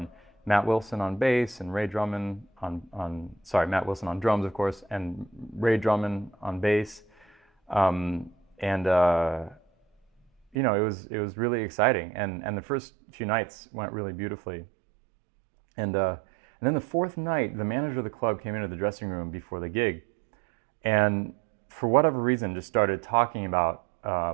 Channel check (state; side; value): drops out; left; at 10.6 s